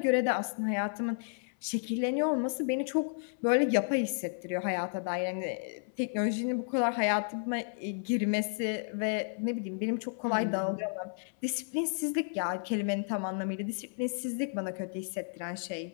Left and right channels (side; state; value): right; silent; 56 dB below the other